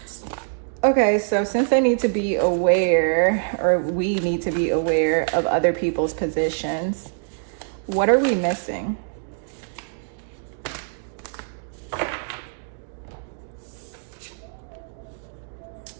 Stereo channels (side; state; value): left; silent; digital silence